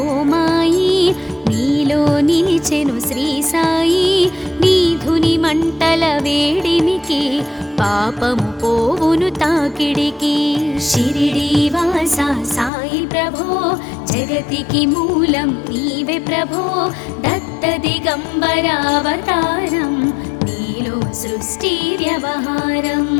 మాయి నీలో నిలిచెను శ్రీ సాయి నీధుని మంటల వేడిమికి పాపము పోవును తాకిడికి షిరిడీవాసా సాయి ప్రభో జగతికి మూలం నీవే ప్రభో దత్త దిగంబర అవతారం నీలో సృష్టి వ్యవహారం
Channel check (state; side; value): drops out; right; at 12.7 s